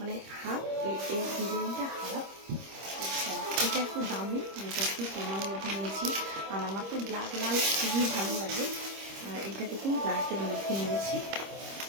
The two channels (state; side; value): late; left; 26 ms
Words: হাফ, এই ডিজাইনটা হাফ। আচ্ছা, এটা একটু দামি, এটা একটু কমার মধ্যে নিয়েছি। আর আমার তো ব্ল্যাক লাল খুবই ভালো লাগে, আর এটা দেখুন ব্ল্যাকের মধ্যে নিয়েছি।